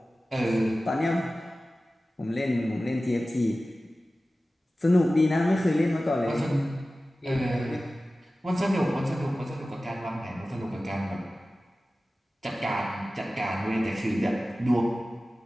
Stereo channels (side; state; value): both; normal; correlation 0.96